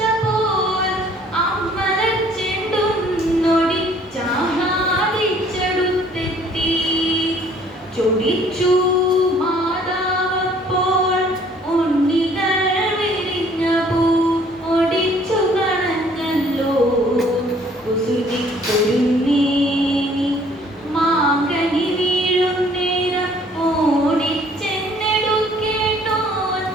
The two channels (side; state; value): both; normal; correlation 0.58